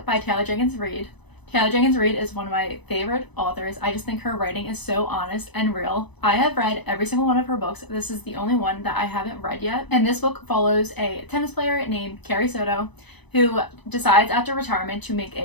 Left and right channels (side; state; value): right; late; 0.99 ms